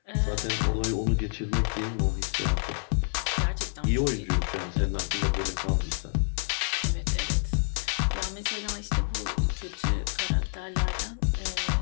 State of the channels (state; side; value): silent; right; 59 dB below the other